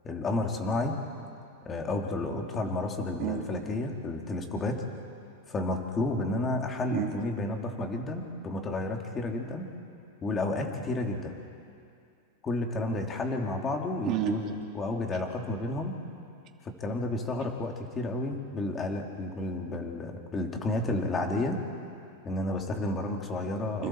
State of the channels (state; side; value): normal; both; correlation 0.41